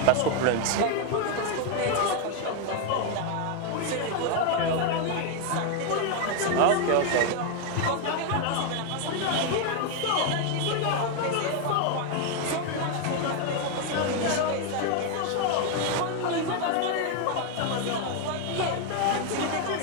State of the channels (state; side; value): different; both; correlation 0.01